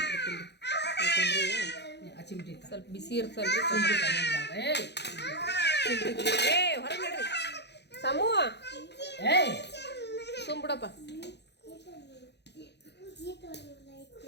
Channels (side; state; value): right; late; 0.50 ms